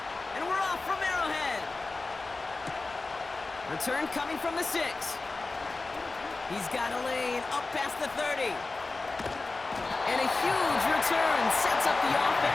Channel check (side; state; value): right; quieter; 3.5 dB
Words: And we're off from Arrowhead. Return coming from the 6. He's got a lane up past the 30. And a huge return sets up the